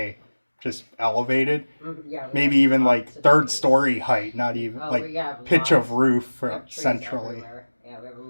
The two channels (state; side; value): inverted; both; correlation -1.00